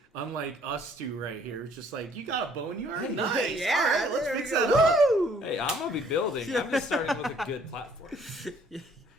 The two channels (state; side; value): normal; both; correlation 0.60